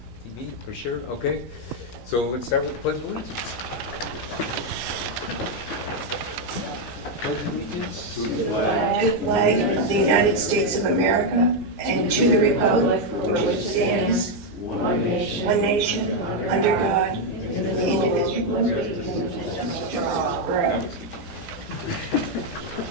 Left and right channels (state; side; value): normal; both; correlation 0.02